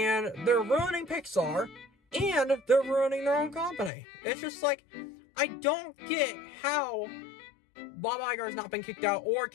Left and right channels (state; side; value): drops out; right; at 3.9 s